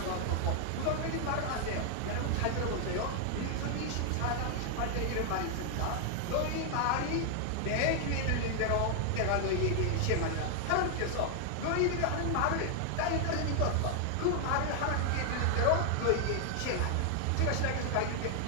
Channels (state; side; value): different; both; correlation 0.00